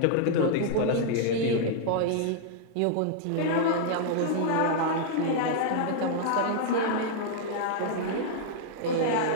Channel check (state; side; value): different; both; correlation -0.01